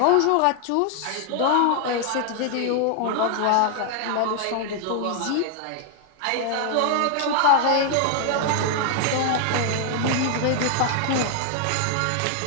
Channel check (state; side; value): different; both; correlation 0.00